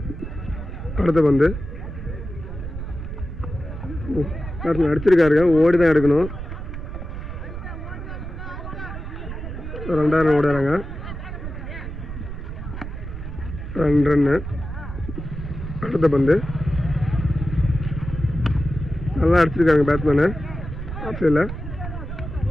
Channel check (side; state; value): right; noise; rumble, 8 dB below the sound